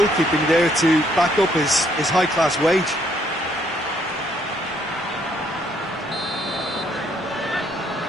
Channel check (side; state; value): both; normal; correlation 0.68